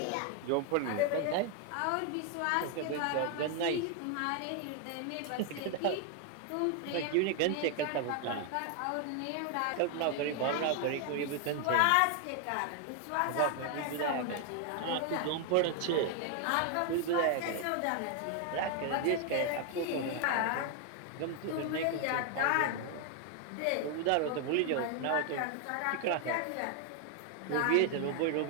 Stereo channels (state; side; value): different; both; correlation 0.00